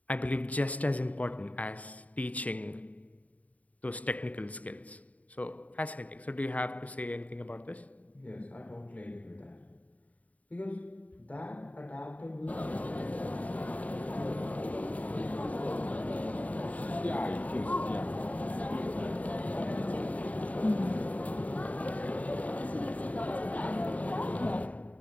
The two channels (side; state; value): right; late; 0.070 ms